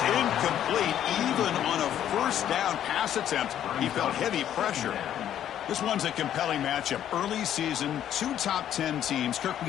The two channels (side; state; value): right; quieter; 10.7 dB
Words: incomplete. Even on a first down pass attempt, he felt heavy pressure. This one's a compelling matchup. Early season, 2 top 10 teams. Kirk,